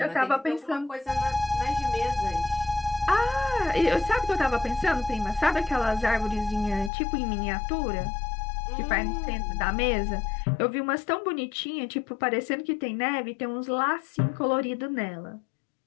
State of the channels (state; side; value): drops out; right; at 6.9 s